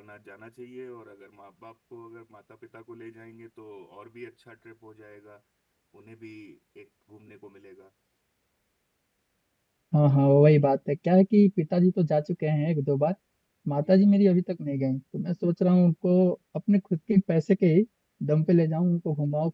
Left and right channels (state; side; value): identical; both; correlation 1.00